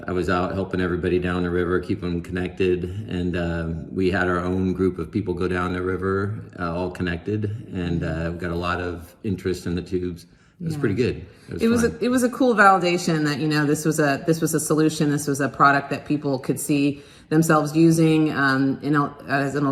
I was out helping everybody down the river, keep them connected, and we had our own group of people go down the river, all connected, and we got a lot of interest in the tubes. It was pretty good. It was a cool validation that this was a solution. This was a product that people could see themselves using as an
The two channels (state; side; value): identical; both; correlation 1.00